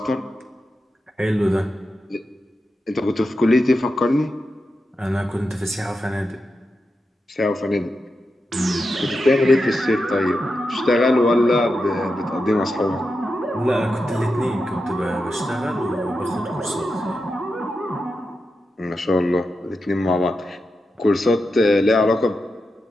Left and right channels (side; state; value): both; normal; correlation 0.89